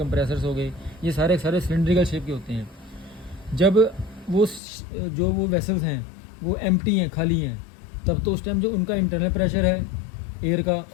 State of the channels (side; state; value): right; drops out; at 4.6 s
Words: हो गए, ये सारे सिलेंड्रिकल शेप के होते हैं। जब वो वेसल्स हैं वो एम्प्टी हैं, खाली हैं, तब तो उस टाइम जो उनका इंटरनल प्रेशर है एयर का